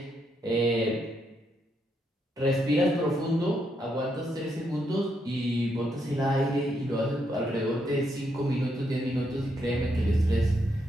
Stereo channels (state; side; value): normal; both; correlation 0.78